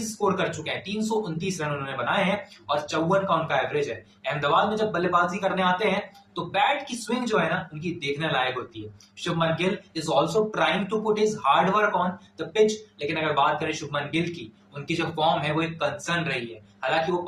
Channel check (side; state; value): both; identical; correlation 1.00